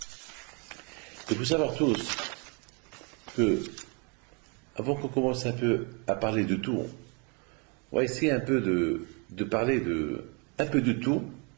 Il faut savoir tous que, avant qu'on commence un peu à parler de tout, on va essayer un peu de parler un peu de tout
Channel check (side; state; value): left; quieter; 33.8 dB